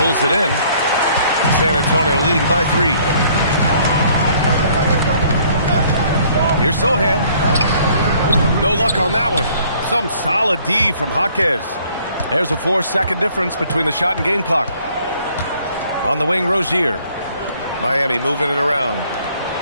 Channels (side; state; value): both; inverted; correlation -0.60